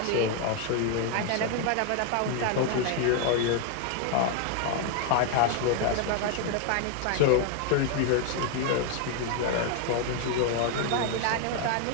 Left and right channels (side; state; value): both; different; correlation 0.01